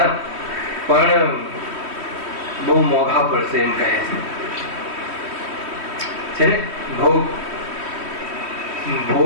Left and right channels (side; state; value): left; late; 3.1 ms